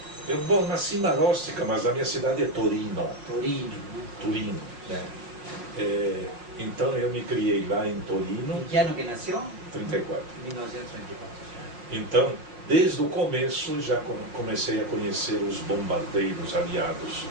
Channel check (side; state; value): left; late; 5.4 ms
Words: Eu nasci em Marostica, mas a minha cidade é Torino. Torino, né? Torino, né? Então eu me criei lá em Torino. Em que ano que nasceu? 34. 1934. Então, Desde o começo já comecei a conhecer os bombardeiros aliados